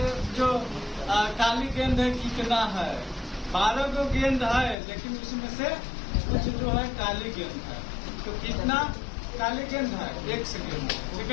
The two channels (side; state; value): right; drops out; at 4.8 s